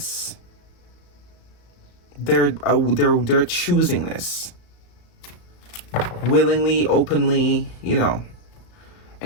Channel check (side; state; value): right; late; 35 ms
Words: They're choosing this. Willingly, openly, you know,